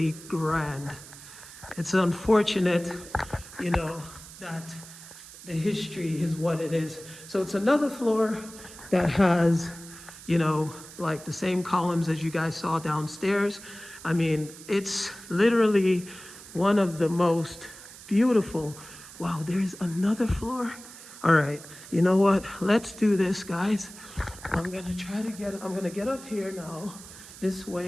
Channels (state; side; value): noise; right; hiss, 17 dB below the sound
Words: grand. It's unfortunate, you know, that the history is what it is. So it's another floor that has, you know, like the same columns as you guys saw downstairs. I mean, it's literally one of the most beautiful. Wow, there's another floor. All right, you know what? Let's do this, guys. I'm gonna get up here now, this